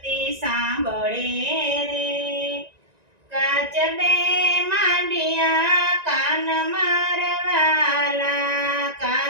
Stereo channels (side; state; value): left; late; 1.9 ms